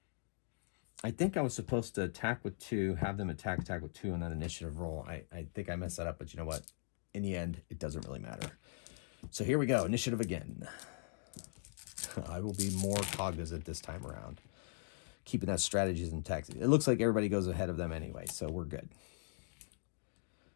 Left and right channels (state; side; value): silent; right; digital silence